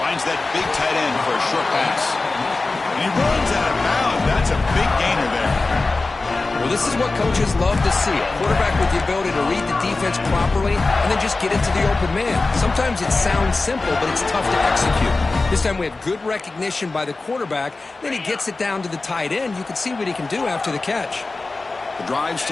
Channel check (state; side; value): quieter; right; 3.5 dB